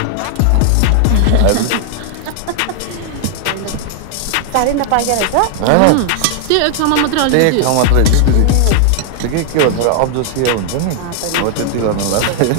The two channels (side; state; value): both; different; correlation 0.00